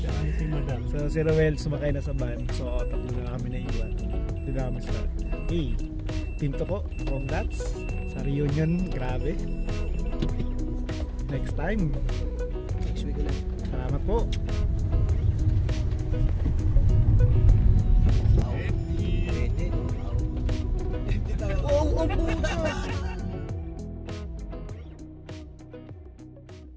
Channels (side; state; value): both; identical; correlation 1.00